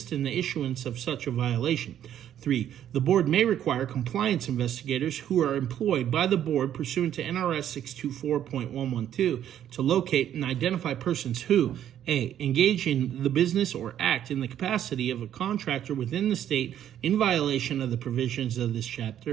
in the issuance of such a violation. 3. The board may require compliance investigators who are employed by the board pursuant to NRS 624.112 to locate and identify persons who, A. Engage in the business or act in the capacity of a contractor within the state in violation of the provisions of this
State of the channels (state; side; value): quieter; left; 10.6 dB